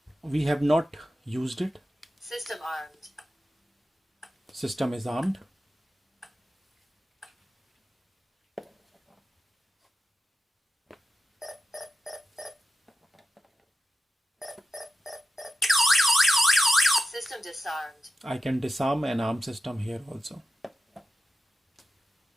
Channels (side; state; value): both; normal; correlation 0.91